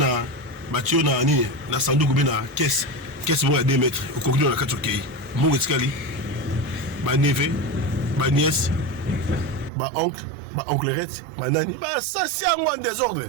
Nini, na Sandou Goubina, caisse bon à 2 mètres, au contenu de la 4 pays. Mon escalier, ma neveu, ma nièce, ma oncle-rette, ma nani. Ça, c'est un moins désordre.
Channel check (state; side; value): drops out; left; at 9.7 s